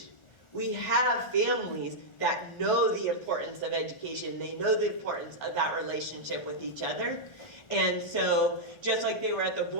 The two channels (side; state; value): right; late; 1.4 ms